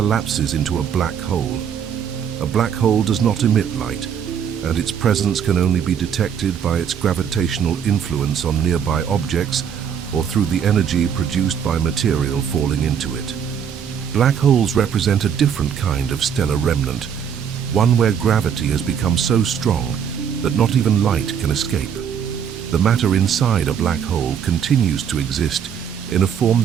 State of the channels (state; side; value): quieter; left; 8.0 dB